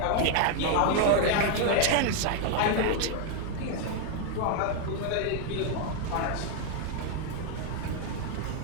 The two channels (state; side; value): different; both; correlation 0.00